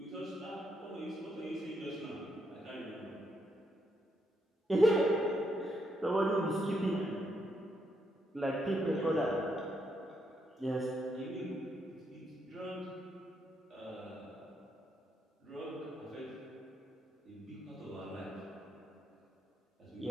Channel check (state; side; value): normal; both; correlation 0.78